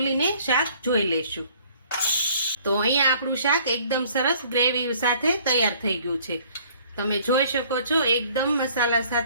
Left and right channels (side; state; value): both; inverted; correlation -0.57